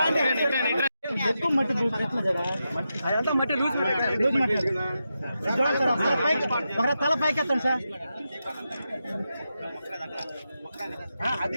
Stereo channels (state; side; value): inverted; both; correlation -0.88